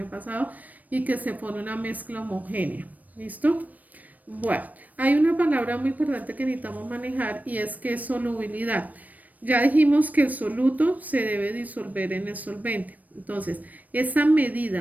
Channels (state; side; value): late; left; 0.078 ms